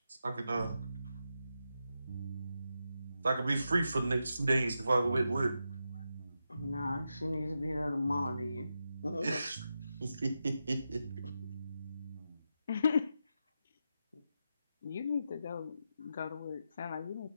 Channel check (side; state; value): both; inverted; correlation -0.87